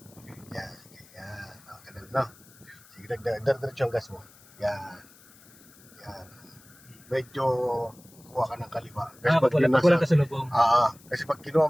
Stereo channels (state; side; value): noise; left; hiss, 25 dB below the sound